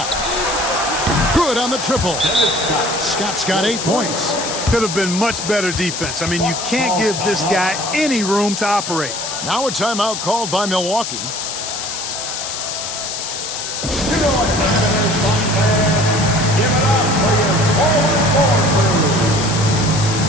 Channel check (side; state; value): left; noise; hiss, 5 dB below the sound